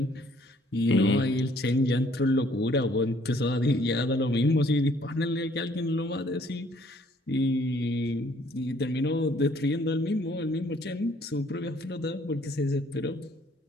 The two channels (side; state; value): both; normal; correlation 0.62